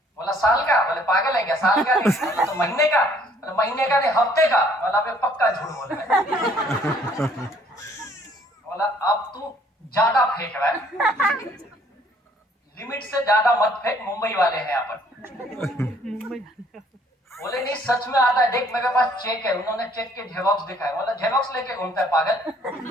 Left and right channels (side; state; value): both; normal; correlation 0.61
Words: बोला साल का? बोले पागल है क्या, साल का नहीं। बोला तो महीने का? बोला महीने का नहीं, हफ्ते का। बोला पक्का झूठ बोल रहा है। बोला अब तू ज्यादा फेंक रहा है, लिमिट से ज्यादा मत फेंक, मुंबई वाले हैं यहाँ पर। बोले नहीं सच में आता है, देख मेरे पास चेक है। उन्होंने चेक के जेरॉक्स दिखाए। बोला जेरॉक्स लेके घूमता है पागल?